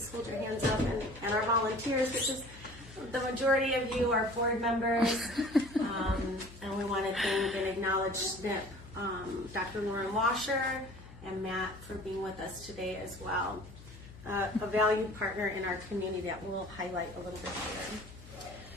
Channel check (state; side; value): noise; left; hum, 17 dB below the sound